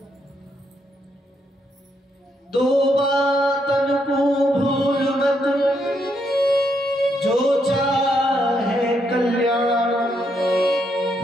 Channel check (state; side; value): normal; both; correlation 0.77